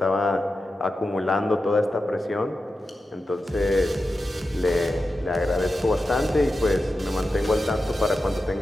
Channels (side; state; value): both; normal; correlation 0.91